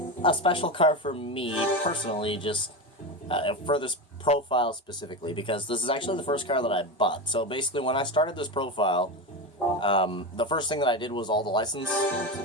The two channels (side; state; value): both; normal; correlation 0.18